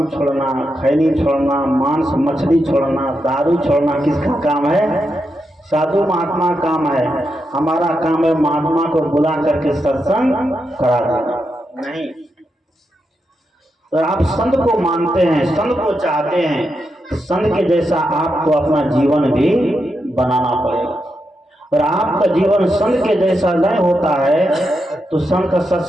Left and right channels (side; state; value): both; normal; correlation 0.85